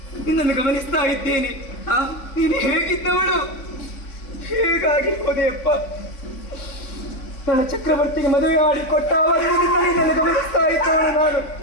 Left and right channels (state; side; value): late; right; 3.5 ms